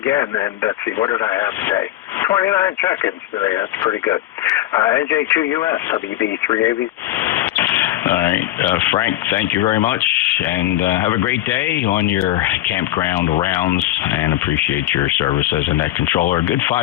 And let's see, what did I have today? 29 check-ins today. That's pretty good. NJ2US, WB3AV. All right, Frank, thank you very much, and have a great day on your campground rounds, and appreciate your service as a net controller. A good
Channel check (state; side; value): quieter; right; 14.4 dB